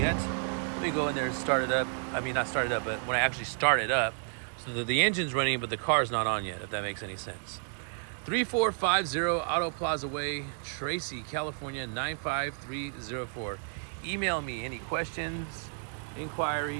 Let me go in there and start it up. I mean, not start it up, but when I actually start it up, so that the engine's running, but the car's not on yet, if that makes any sense. 3450 Auto Plaza Way, Tracy, California, 95304. Email me any questions,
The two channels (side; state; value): left; silent; 57 dB below the other